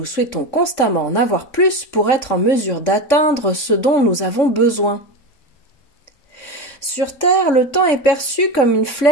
souhaitons constamment en avoir plus pour être en mesure d'atteindre ce dont nous avons besoin. Sur Terre, le temps est perçu comme une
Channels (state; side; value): late; right; 3.6 ms